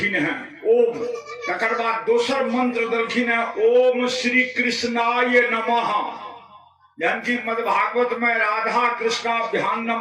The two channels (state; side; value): identical; both; correlation 1.00